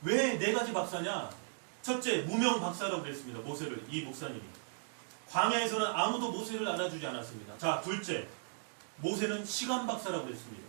왜 4가지 박사냐? 첫째, 무명 박사라고 그랬습니다. 모세를, 이 목사님이. 광야에서는 아무도 모세를 알아주지 않았습니다. 자, 둘째, 모세는 시간 박사라고 그랬습니다.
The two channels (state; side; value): silent; left; digital silence